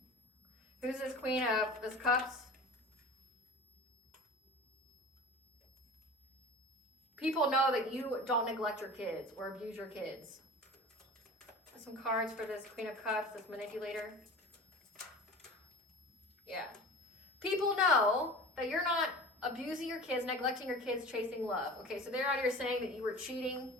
Who's this Queen of this Cups? People know that you don't neglect your kids or abuse your kids. Some cards for this Queen of Cups, this manipulator. Yeah. People know that you're not abusing your kids, neglecting your kids, chasing love. Okay, so they're out here saying that you were cheating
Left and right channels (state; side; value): normal; both; correlation 0.37